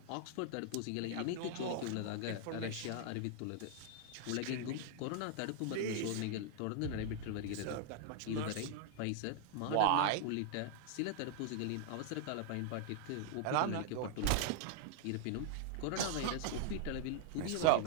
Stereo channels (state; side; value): different; both; correlation 0.00